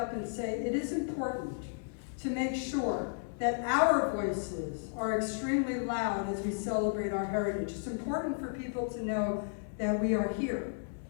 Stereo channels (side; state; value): right; silent; digital silence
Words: and say it is important to make sure that our voices are extremely loud as we celebrate our heritage. It's important for people to know that we are here,